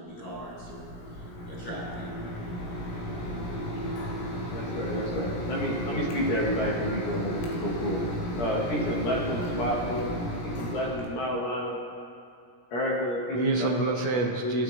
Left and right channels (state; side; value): late; right; 17 ms